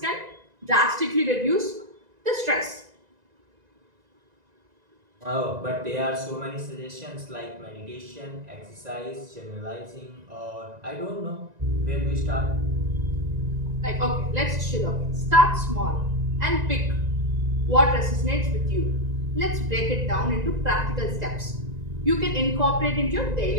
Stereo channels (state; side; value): late; left; 1.9 ms